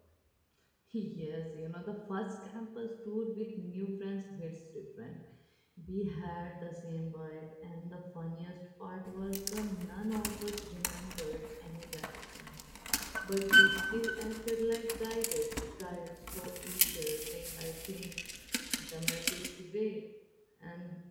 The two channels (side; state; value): both; identical; correlation 1.00